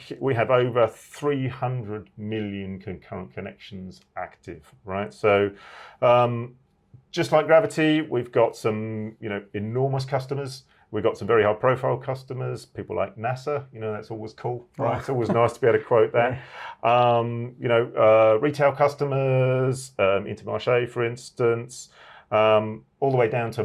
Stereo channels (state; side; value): identical; both; correlation 1.00